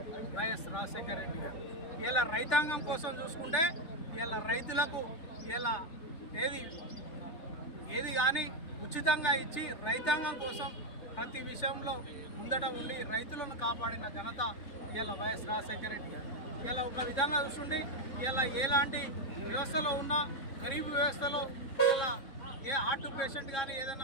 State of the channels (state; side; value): late; right; 3.7 ms